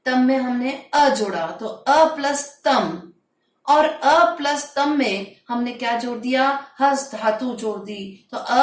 तम में हमने अ जोड़ा तो अ प्लस तम, और अ प्लस तम में हमने क्या जोड़ दिया, हस धातु जोड़ दी, तो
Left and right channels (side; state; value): both; identical; correlation 1.00